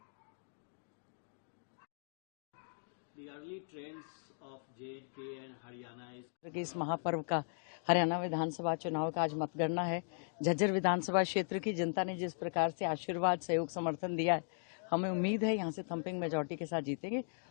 The early trends of J&K and Haryana is इस महापर्व का हरियाणा विधानसभा चुनाव का आज मतगणना है। झज्जर विधानसभा क्षेत्र की जनता ने जिस प्रकार से आशीर्वाद, सहयोग, समर्थन दिया है, हमें उम्मीद है यहाँ से थम्पिंग मेजॉरिटी के साथ जीतेंगे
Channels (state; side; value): silent; right; digital silence